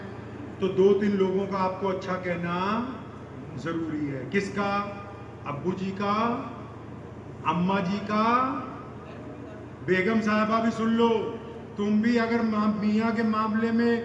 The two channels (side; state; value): both; identical; correlation 1.00